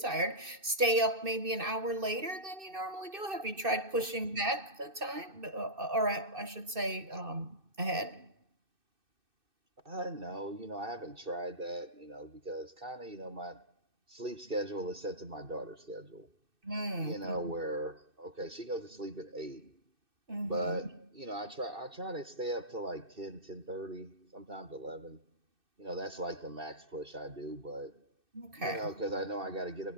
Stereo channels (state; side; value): late; left; 2.6 ms